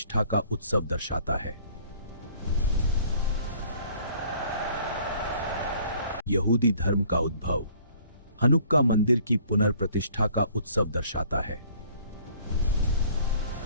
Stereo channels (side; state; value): both; inverted; correlation -0.56